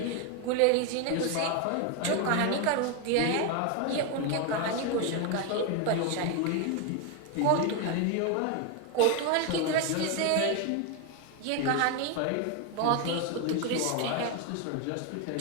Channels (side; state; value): both; different; correlation 0.01